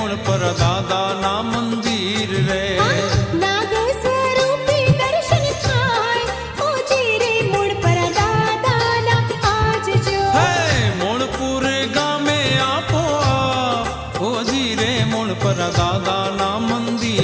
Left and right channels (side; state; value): both; identical; correlation 1.00